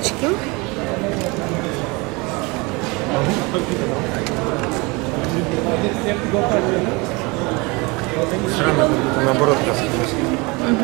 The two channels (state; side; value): quieter; left; 26.4 dB